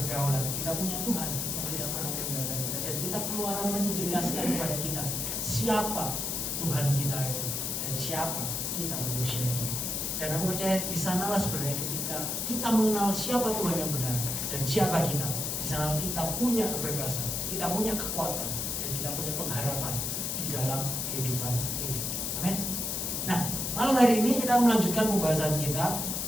kita punya Tuhan yang tidak pernah meninggalkan kita, dan kita Keluaran menjelaskan kepada kita siapa Tuhan kita itu dan siapa kita manusia itu. Dan aku percaya di sanalah sebenarnya ketika kita mengenal siapa Tuhan yang benar dan siapa kita, di sana kita punya kebebasan, kita punya kekuatan, dan kita punya pengharapan di dalam kehidupan ini. Amin. Nah, malam hari ini kita melanjutkan pembahasan kita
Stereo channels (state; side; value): noise; left; hiss, 1 dB below the sound